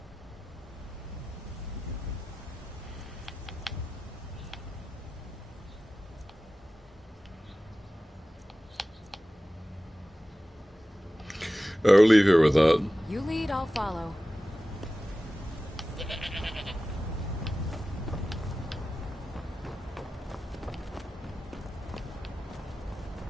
I'll leave here with that. You lead, I'll follow.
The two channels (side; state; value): both; normal; correlation 0.95